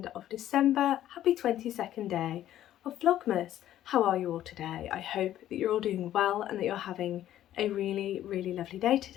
of December. Happy 22nd day of Vlogmas. How are you all today? I hope that you're all doing well and that you're having a really, really lovely day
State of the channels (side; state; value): right; quieter; 12.4 dB